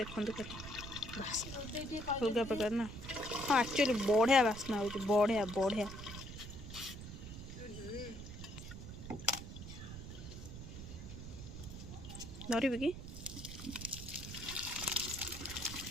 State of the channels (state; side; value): noise; right; rumble, 10 dB below the sound